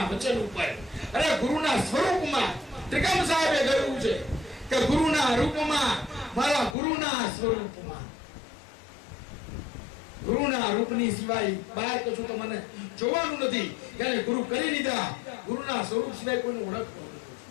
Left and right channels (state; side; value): drops out; right; at 6.8 s